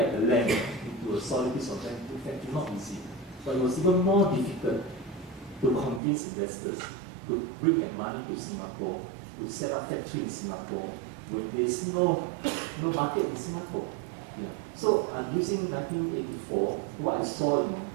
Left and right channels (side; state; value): left; drops out; at 6.0 s